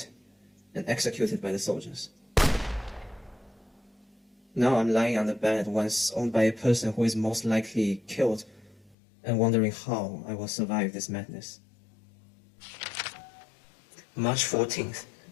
and executed by the soldiers. Now I'm lying on the bed once owned by a person who is most likely killed and wondering how I will survive this madness. March 14th,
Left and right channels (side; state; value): right; drops out; at 9.0 s